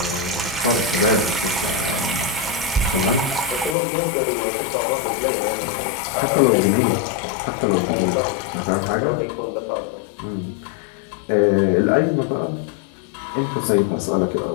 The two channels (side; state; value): right; drops out; at 3.8 s